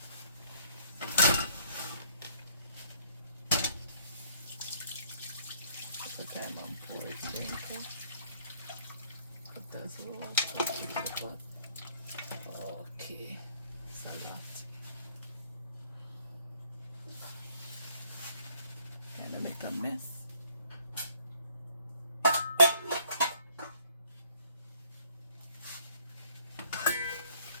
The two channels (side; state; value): both; inverted; correlation -0.62